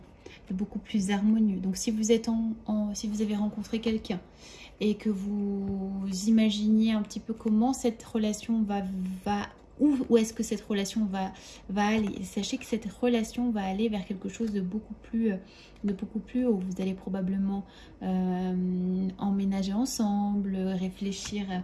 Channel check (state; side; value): identical; both; correlation 1.00